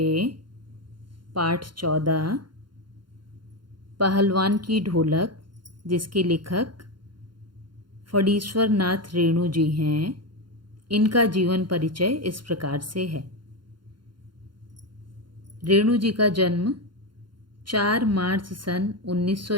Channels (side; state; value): left; late; 0.72 ms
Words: पाठ 14 पहलवान की ढोलक, जिसके लेखक फणीश्वर नाथ रेणु जी हैं, इनका जीवन परिचय इस प्रकार से है। रेणु जी का जन्म 4 मार्च सन